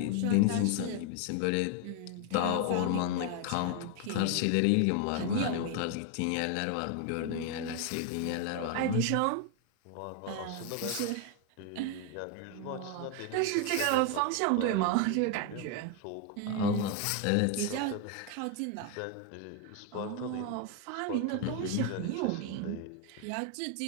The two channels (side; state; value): both; different; correlation 0.01